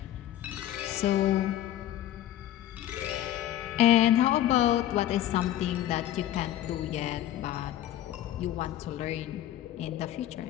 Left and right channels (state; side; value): quieter; right; 12.6 dB